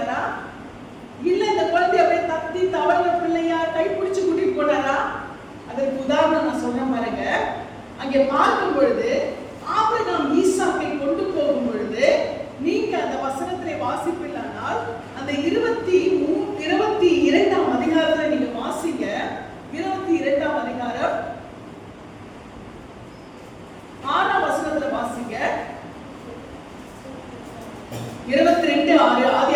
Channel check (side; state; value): both; identical; correlation 1.00